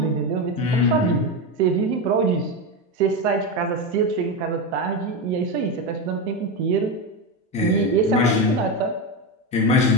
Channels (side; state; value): both; normal; correlation 0.14